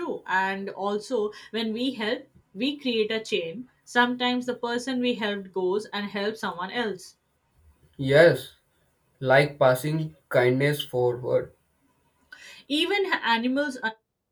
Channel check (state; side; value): identical; both; correlation 1.00